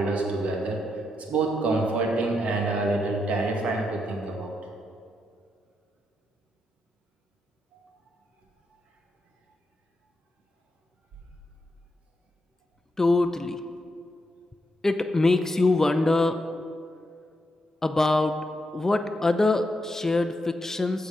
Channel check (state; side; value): normal; both; correlation 0.82